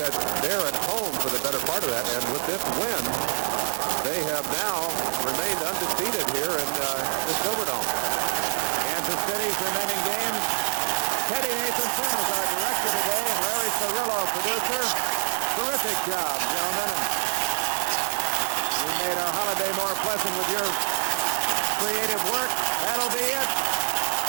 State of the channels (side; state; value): left; silent; digital silence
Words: they're at home for the better part of that, and with this win, they have now remained undefeated here in the Silverdome. Kansas City's remaining games. Teddy Nathanson is our director today, and Larry Cirillo, producer. Terrific job, gentlemen. And you made our holiday more pleasant with your creative work. That'll be it.